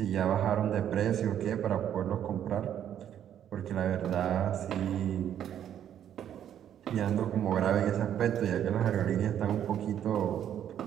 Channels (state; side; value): quieter; left; 10.1 dB